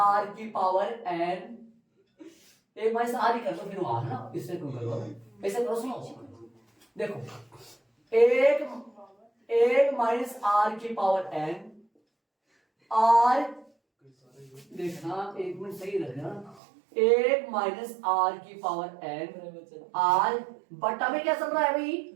की पावर n, 1 माइनस r ही कर दो, फिर वहां ना, इससे क्यों करो, ऐसे करो, सुनो देखो, 1 माइनस r की पावर n, r देखना, एक मिनट सही रखना, 1 माइनस r की पावर n, r बट्टा में क्या चल रहा है भाई,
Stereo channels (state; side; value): drops out; left; at 16.6 s